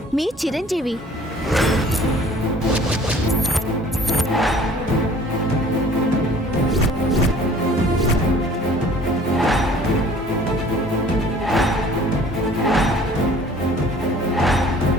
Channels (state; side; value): normal; both; correlation 0.52